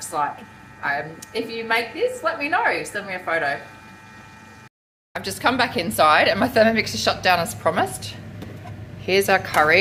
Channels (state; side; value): identical; both; correlation 1.00